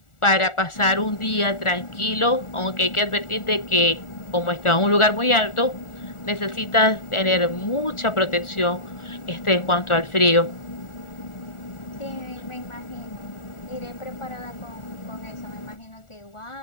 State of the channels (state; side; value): late; right; 1.4 ms